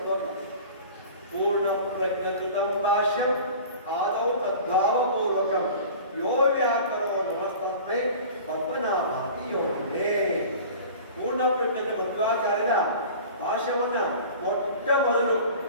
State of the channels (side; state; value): both; inverted; correlation -0.40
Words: ಶ್ಲೋಕ. ಪೂರ್ಣ ಪ್ರಜ್ಞಾಂ ಭಾಷ್ಯಂ ಆದೌ ತದ್ಭಾವ ಪೂರ್ವಕಂ ಯೋ ವ್ಯಾಕರೋ ನಮಸ್ತಸ್ಮೈ ಪದ್ಮನಾಭಾತಿ ಯೋನೇ. ಪೂರ್ಣ ಪ್ರಜ್ಞೆ ಮಧ್ವಾಚಾರ್ಯರ ಭಾಷ್ಯವನ್ನ ಮೊಟ್ಟ ಮೊದಲು